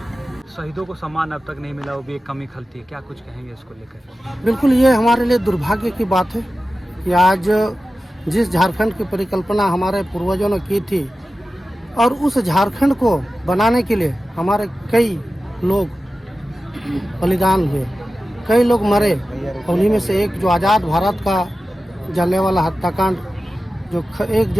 शहीदों को सम्मान अब तक नहीं मिला, वो भी एक कमी खलती है। क्या कुछ कहेंगे इसको लेकर? बिल्कुल, ये हमारे लिए दुर्भाग्य की बात है कि आज जिस झारखंड की परिकल्पना हमारे पूर्वजों ने की थी और उस झारखंड को बनाने के लिए हमारे कई लोग बलिदान हुए, कई लोग मरे। उन्हीं में से एक जो आज़ाद भारत का जलियांवाला हत्याकांड जो 1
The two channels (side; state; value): both; normal; correlation 0.94